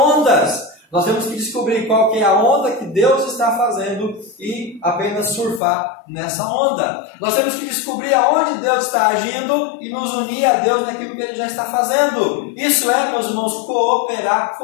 Nós temos que descobrir qual que é a onda que Deus está fazendo e apenas surfar nessa onda. Nós temos que descobrir aonde Deus está agindo e nos unir a Deus naquilo que Ele já está fazendo. Isso é, meus irmãos, cooperar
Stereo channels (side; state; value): right; drops out; at 5.6 s